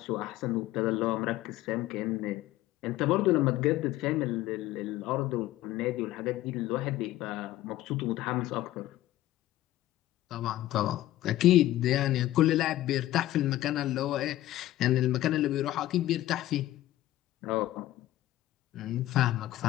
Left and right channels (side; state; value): right; quieter; 15.0 dB